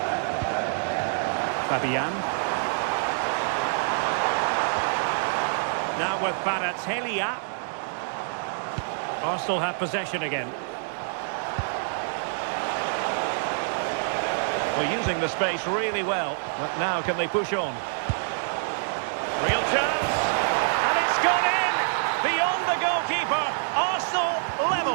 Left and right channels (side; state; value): left; silent; 61 dB below the other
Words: Fabian. Now with Kvaratskhelia. Arsenal have possession again. Well, using the space really well, but now can they push on? Real chance, and it's gone in! Beyond the goalkeeper, Arsenal